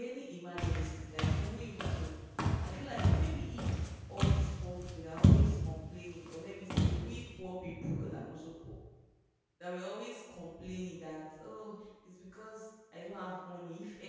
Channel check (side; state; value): both; identical; correlation 1.00